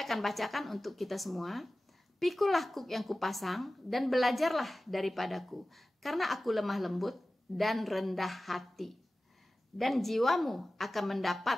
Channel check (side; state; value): both; normal; correlation 0.96